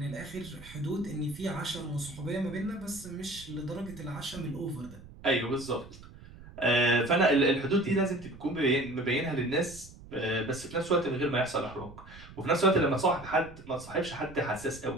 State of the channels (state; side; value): noise; right; rumble, 18 dB below the sound